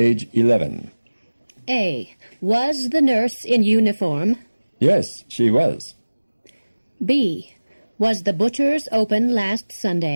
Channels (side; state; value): both; inverted; correlation -1.00